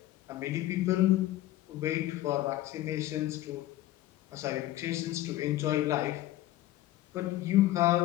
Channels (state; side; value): quieter; right; 15.3 dB